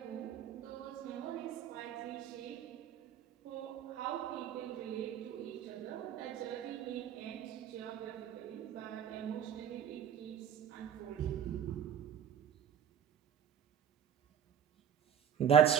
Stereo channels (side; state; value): left; quieter; 8.8 dB